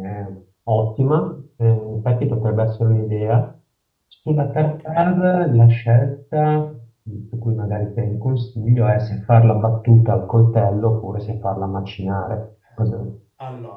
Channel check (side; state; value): both; identical; correlation 1.00